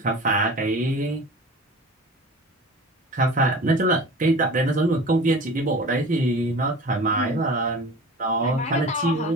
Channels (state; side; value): normal; both; correlation 0.38